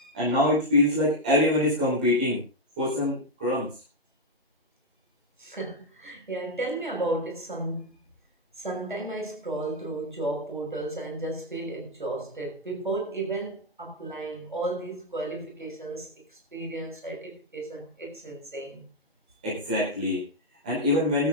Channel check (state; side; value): normal; both; correlation 0.02